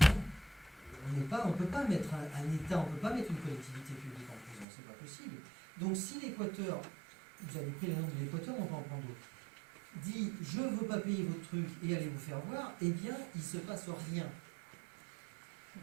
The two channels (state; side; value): drops out; left; at 4.7 s